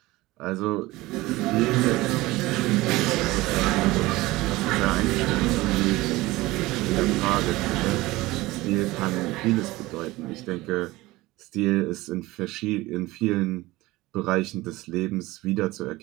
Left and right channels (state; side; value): quieter; left; 19.5 dB